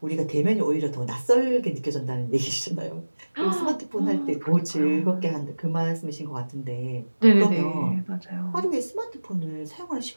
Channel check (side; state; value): both; inverted; correlation -1.00